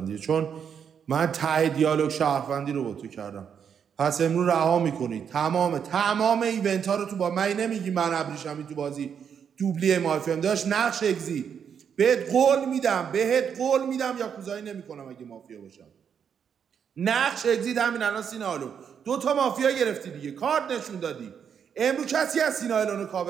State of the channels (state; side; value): quieter; left; 7.6 dB